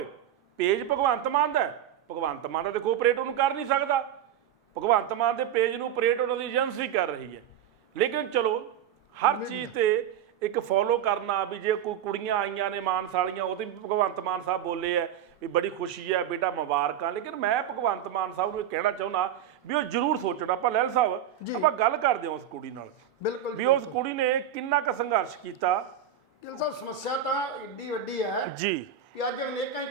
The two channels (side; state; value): left; quieter; 9.6 dB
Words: ਪੇਜ ਭਗਵੰਤ ਮਾਨ ਦਾ ਭਗਵੰਤ ਮਾਨ ਦਾ ਦੇਖੋ ਆਪਰੇਟ ਉਹਨੂੰ ਕਰ ਨਹੀਂ ਸਕਦਾ। ਭਗਵੰਤ ਮਾਨ ਦੇ ਪੇਜ ਨੂੰ ਆਪਰੇਟ ਉਹਨਾਂ ਦੀ ਏਜੰਸੀ ਕਰ ਰਹੀ ਹੈ। ਲੇਕਿਨ ਚਲੋ ਹਰ ਚੀਜ਼ ਤੇ ਇੱਕ ਫੋਲੋ ਕਰਨਾ ਵੀ ਜੇ ਕੋਈ ਕੁੜੀਆਂ ਆਈਆਂ ਨੇ ਮਾਨਸਾਲੀਆਂ ਉਹਦੇ ਵੀ ਭਗਵੰਤ ਮਾਨ ਸਾਹਿਬ ਬੋਲੇ ਹੈ ਵੀ ਬੜੀ ਖੁਸ਼ੀ ਹੈ ਬੇਟਾ ਮੁਬਾਰਕਾਂ। ਲੇਕਿਨ ਮੈਂ ਭਗਵੰਤ ਮਾਨ ਸਾਹਿਬ ਨੂੰ ਕਹਿਣਾ ਚਾਹੁੰਦਾ ਵੀ ਉਹ ਜ਼ਰੂਰ ਸੋਚਣਾ। ਆਪਾਂ ਲਹਿਲ ਸਾਹਿਬ ਆਪਾਂ ਗੱਲ ਕਰਦੇ ਹਾਂ ਉਸ ਕੁੜੀ ਨਾਲ ਬਿਲਕੁਲ ਵੀ ਉਸ ਕੁੜੀ ਨੇ ਕਿੰਨਾ ਕੁ ਸੰਘਰਸ਼ ਕੀਤਾ। ਗਿੱਲ ਸਾਹਿਬ ਸਮੱਸਿਆ ਤਾਂ ਏਡੀ ਵੱਡੀ ਹੈ ਜੀ ਕਿ ਅੱਜ ਅਨੇਕਾਂ ਹੀ